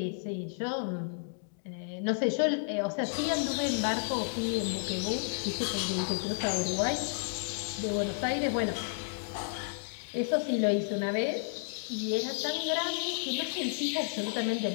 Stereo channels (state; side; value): silent; right; digital silence